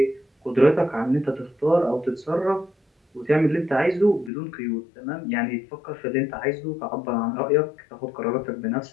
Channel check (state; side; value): drops out; right; at 4.3 s